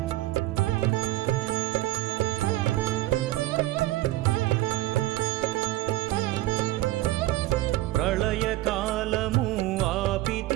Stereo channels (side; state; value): left; quieter; 16.8 dB